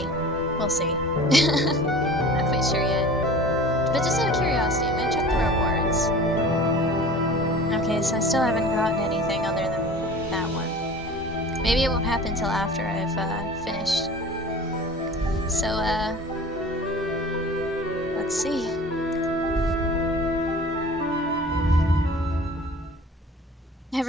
We'll see. Not quite sure yet. But just out of curiosity, I'm gonna check the rewards. Okay, so I still haven't gotten anything other than that one. Maybe it won't happen till after I've, finished. So, let's see.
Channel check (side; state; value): both; normal; correlation 0.42